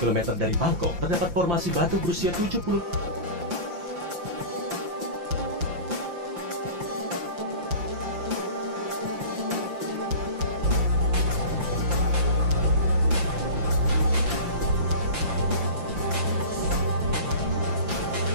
dari Bangkok, terdapat formasi batu berusia 70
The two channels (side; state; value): left; late; 5.8 ms